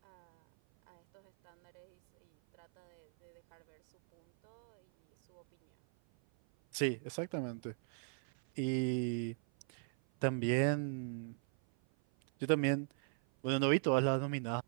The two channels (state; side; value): silent; left; 53 dB below the other